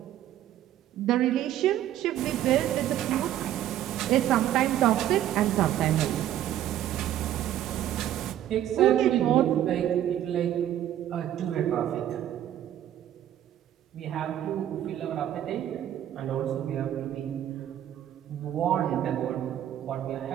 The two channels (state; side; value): quieter; left; 11.8 dB